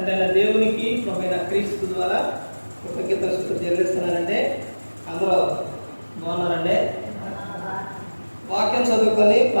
దేవునికి ప్రభువైన క్రీస్తు ద్వారా కృతజ్ఞతలు చెల్లిస్తున్నానండి. అందరూ బాగున్నారండి. వాక్యం చదువుకొని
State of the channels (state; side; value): inverted; both; correlation -1.00